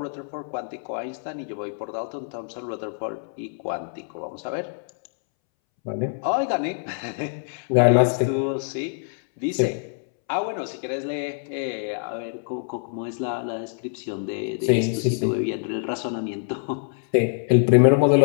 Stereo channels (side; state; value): right; silent; 62 dB below the other